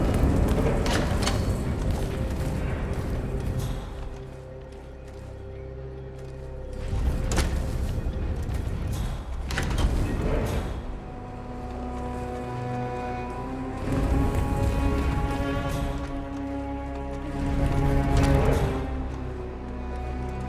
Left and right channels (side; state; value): both; identical; correlation 1.00